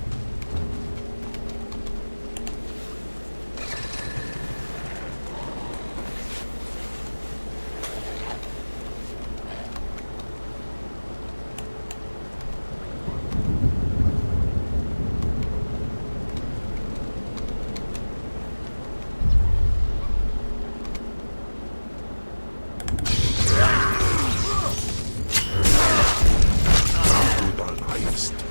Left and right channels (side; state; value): both; inverted; correlation -1.00